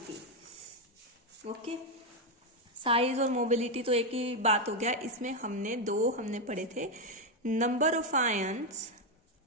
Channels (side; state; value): both; normal; correlation 0.05